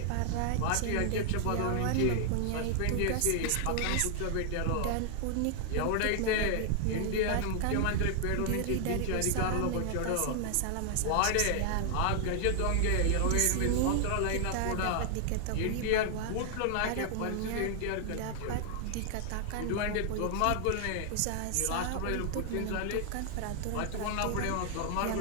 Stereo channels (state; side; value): different; both; correlation 0.00